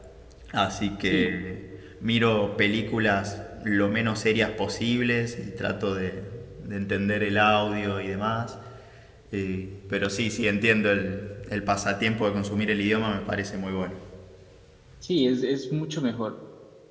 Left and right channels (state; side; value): identical; both; correlation 1.00